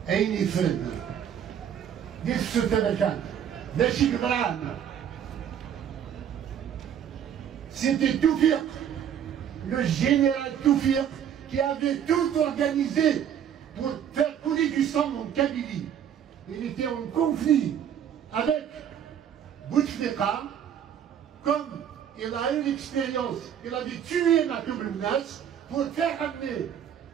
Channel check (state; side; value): quieter; left; 9.1 dB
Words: أين يفرد ديك السلطة كانت ماشي قدران. C'était Toufik, le général Toufik, qui avait tout organisé pour faire couler du sang en Kabylie. Il était en conflit avec Bouteflika, comme il a eu l'expérience, il avait tué Matoub Mnas pour faire